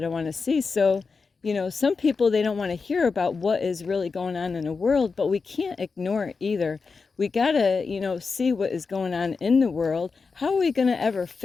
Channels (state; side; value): quieter; right; 4.7 dB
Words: I want to see. So, some people, they don't want to hear about what is really going on in the world, but we can't ignore it either. We gotta, see what is going on in the world. How are we gonna ever